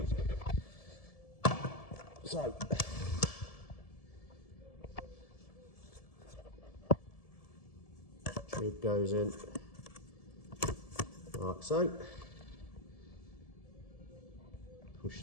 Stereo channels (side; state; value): right; late; 1.7 ms